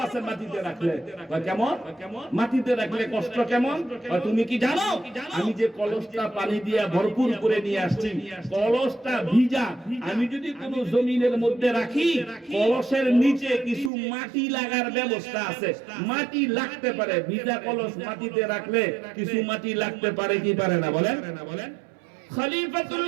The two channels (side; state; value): left; drops out; at 13.9 s